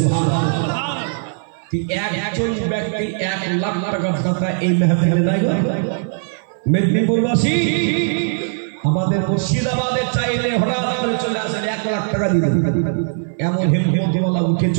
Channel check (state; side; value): silent; left; 58 dB below the other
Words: একজন ব্যক্তি 1 লাখ টাকার কথা এই মেহফিলে নাই গো। মেদিনীপুরবাসী আমাদের মুর্শিদাবাদে চাইলে হঠাৎ করে চলে আসেন 1 লাখ টাকা দিতে, এমন হিম্মতওয়ালা উঠে